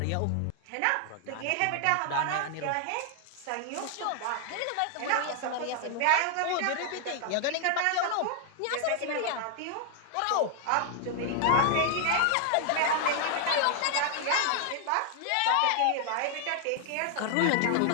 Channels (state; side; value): different; both; correlation 0.00